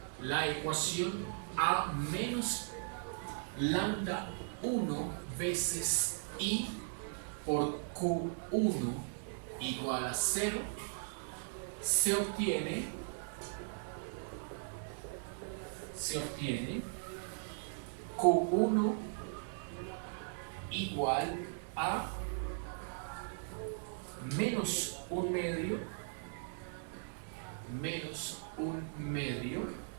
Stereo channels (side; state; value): left; silent; digital silence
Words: la ecuación A menos lambda 1 veces I por Q1 igual a 0 se obtiene Q1 igual a menos un medio